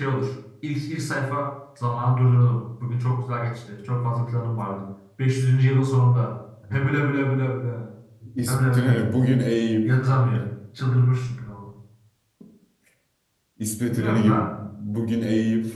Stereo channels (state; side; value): identical; both; correlation 1.00